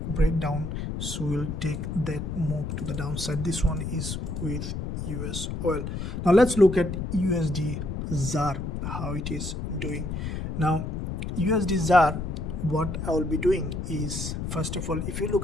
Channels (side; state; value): left; noise; rumble, 4 dB below the sound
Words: break down. So we'll take that move to the downside. This one is with US oil. Now let's look at USDZAR, how it is doing. Now USDZAR, what I will be doing is, first of all, if you